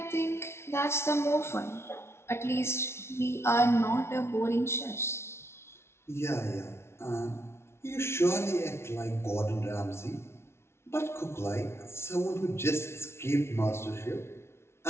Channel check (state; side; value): late; right; 0.12 ms